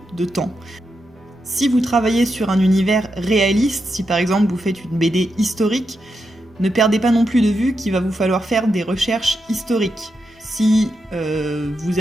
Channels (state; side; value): normal; both; correlation 0.85